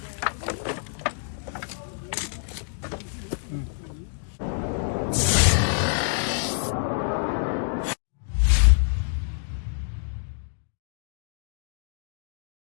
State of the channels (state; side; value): silent; right; digital silence